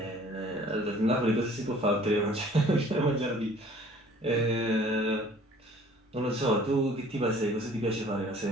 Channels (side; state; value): both; normal; correlation 0.53